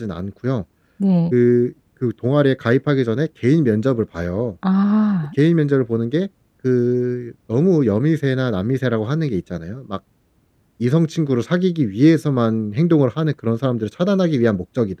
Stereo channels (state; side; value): identical; both; correlation 1.00